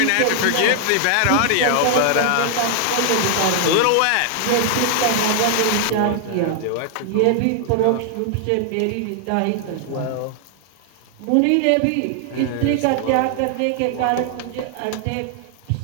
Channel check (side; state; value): both; different; correlation 0.00